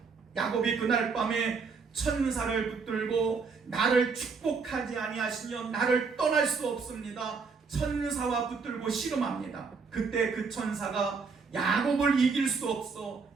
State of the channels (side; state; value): left; quieter; 4.9 dB